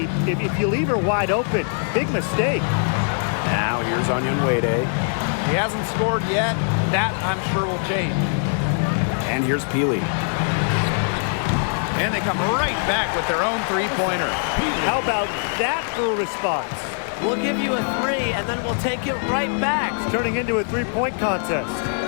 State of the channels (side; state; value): right; silent; 64 dB below the other